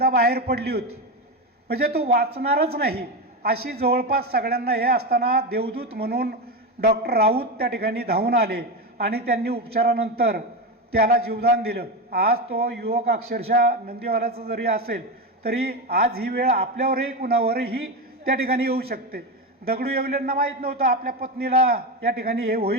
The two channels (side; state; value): both; normal; correlation 0.15